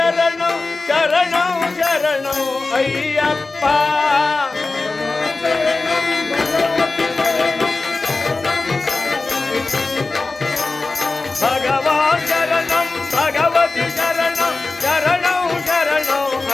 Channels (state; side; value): quieter; right; 3.5 dB